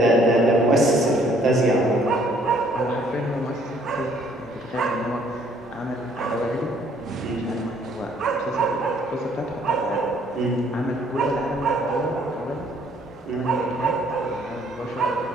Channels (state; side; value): normal; both; correlation 0.62